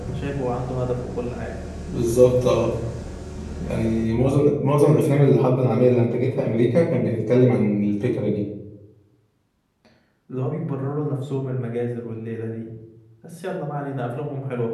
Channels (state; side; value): identical; both; correlation 1.00